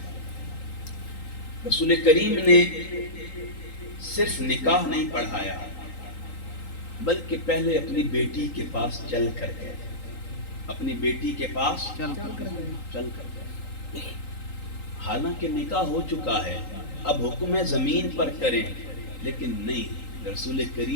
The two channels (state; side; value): late; right; 3.8 ms